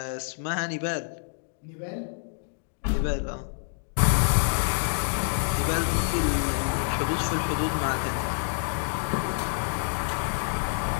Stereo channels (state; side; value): silent; right; digital silence